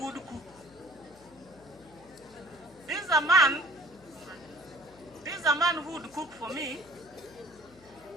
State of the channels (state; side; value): noise; left; hum, 25 dB below the sound